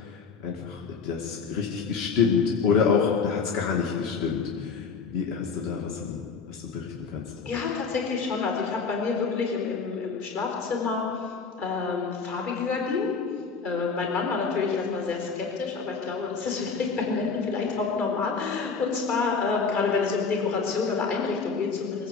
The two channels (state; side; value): quieter; right; 5.1 dB